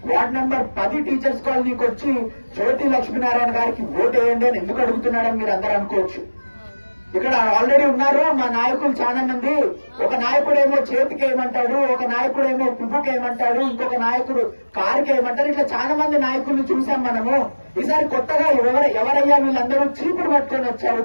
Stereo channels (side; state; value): both; inverted; correlation -1.00